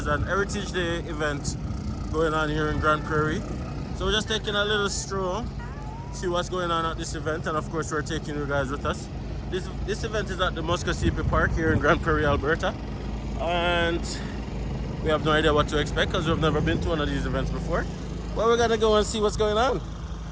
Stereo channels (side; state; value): both; identical; correlation 1.00